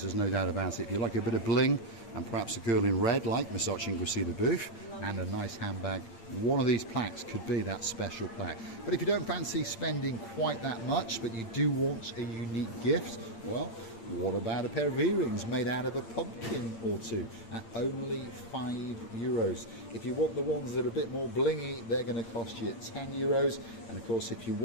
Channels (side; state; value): right; late; 8.8 ms